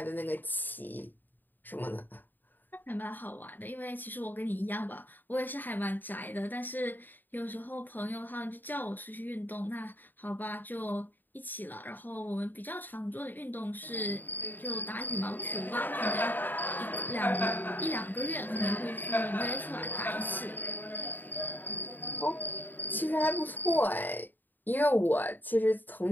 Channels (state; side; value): late; right; 0.090 ms